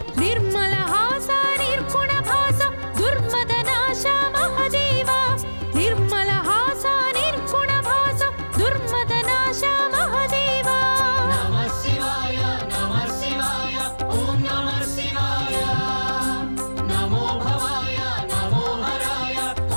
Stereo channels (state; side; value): inverted; both; correlation -1.00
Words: निर्मल हास निर्गुण भास दुर्मदनाश महादेवा निर्मल हास निर्गुण भास दुर्मदनाश महादेवा नमः शिवाय ॐ नमः शिवाय नमो भवाय नमो हराय